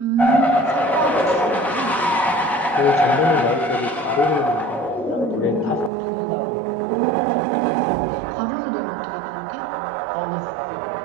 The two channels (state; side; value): drops out; left; at 5.9 s